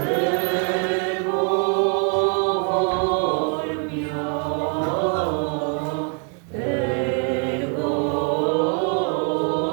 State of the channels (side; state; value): left; quieter; 38.2 dB